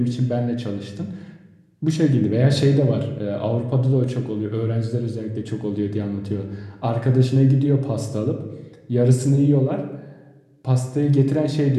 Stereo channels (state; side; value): identical; both; correlation 1.00